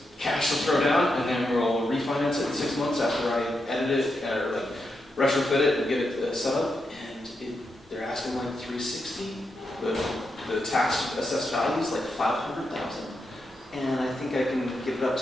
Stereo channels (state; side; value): normal; both; correlation 0.85